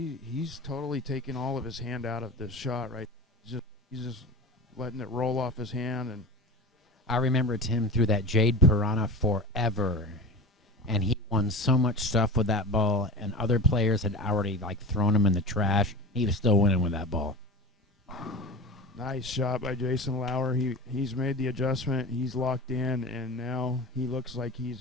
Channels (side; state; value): both; normal; correlation 0.30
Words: he's totally taking all of his hand out of this shot, right? He's just letting it roll off his hand. And I remember Tim threw that Jade Piranha forever, and he won so much stuff with that ball, and other players had already like thrown him in the trash. He was still winning with that ball. nice shot by Jason Lauer. He's made the adjustment. He's locked in, and now he looks like